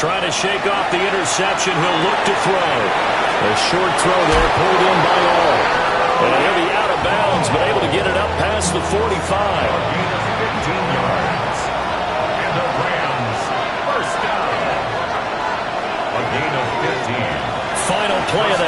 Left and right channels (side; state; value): both; identical; correlation 1.00